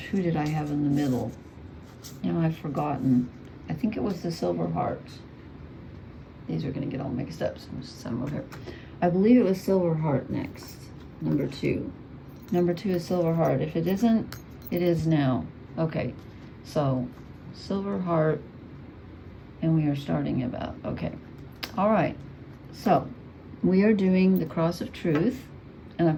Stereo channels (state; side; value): identical; both; correlation 1.00